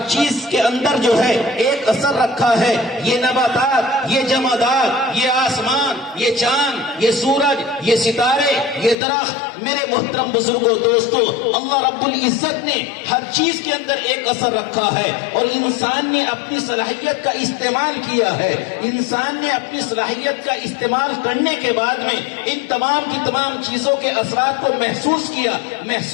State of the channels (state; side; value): drops out; right; at 9.0 s